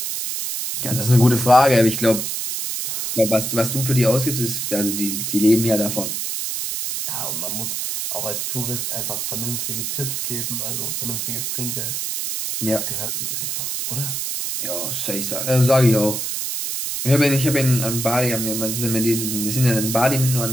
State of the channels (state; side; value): noise; right; hiss, 3 dB below the sound